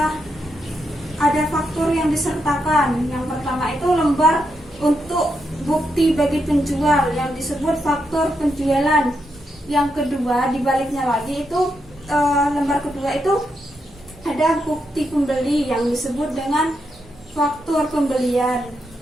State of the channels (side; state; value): both; normal; correlation 0.83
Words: Yang pertama itu lembar untuk bukti bagi penjual yang disebut faktur penjualan. Yang kedua, dibaliknya lagi itu lembar kedua itu ada bukti pembeli yang disebut dengan faktur pembelian.